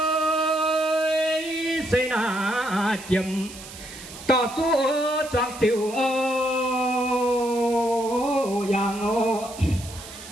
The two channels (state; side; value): noise; right; hiss, 15 dB below the sound